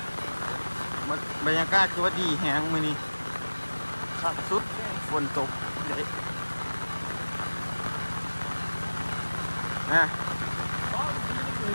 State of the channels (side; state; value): both; inverted; correlation -1.00